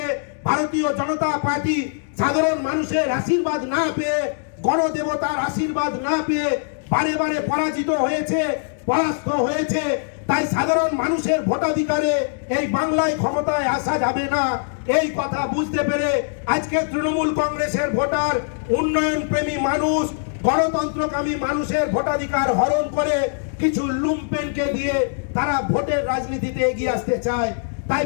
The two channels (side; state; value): right; silent; digital silence